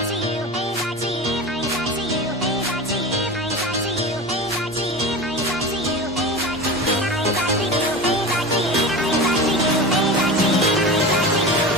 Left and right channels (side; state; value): both; normal; correlation 0.29